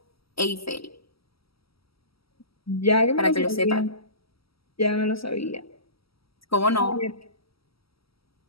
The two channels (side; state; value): right; late; 0.75 ms